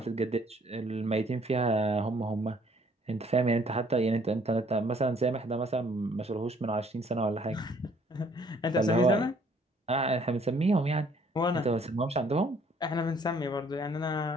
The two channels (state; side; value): normal; both; correlation 0.61